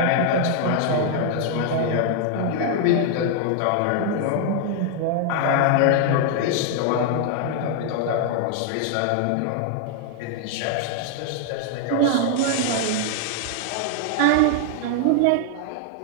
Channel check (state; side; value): different; both; correlation 0.00